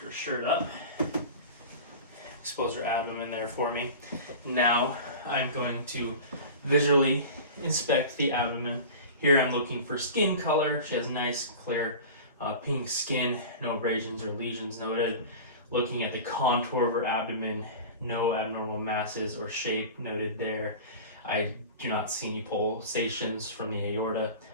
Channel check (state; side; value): inverted; both; correlation -0.34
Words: her shirt up. Expose her abdomen there for me. Now I'm going to visually inspect the abdomen. Here I'm looking for skin color. She has nice, clear, pink skin, no abrasions or lesions noted. Looking at the contour of her abdomen, no abnormal masses or shape noted there. I do not see any pulsations from the aorta